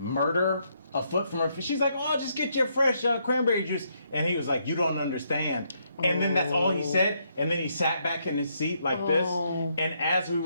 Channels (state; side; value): inverted; both; correlation -0.75